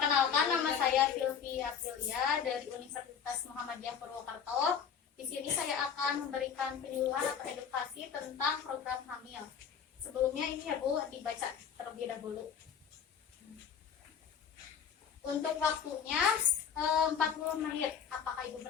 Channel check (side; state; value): right; quieter; 7.5 dB